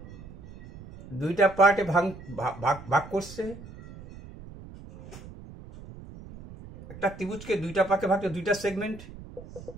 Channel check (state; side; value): noise; right; rumble, 16 dB below the sound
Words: দুইটা পার্টে ভাগ করছে, একটা ত্রিভুজকে দুইটা পার্টে ভাগ করে দুইটা